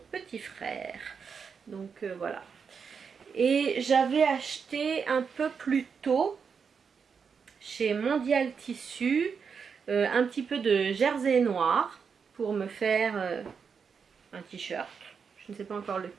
petit frère. Donc voilà. Et j'avais acheté un peu plus tôt chez Mondial Tissu un petit peu de jersey noir pour me faire un t-shirt. Je ne sais pas encore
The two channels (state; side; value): quieter; left; 6.1 dB